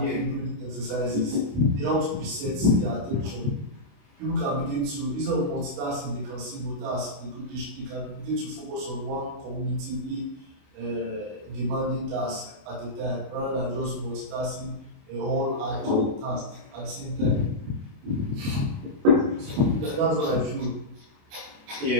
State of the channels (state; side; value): late; left; 28 ms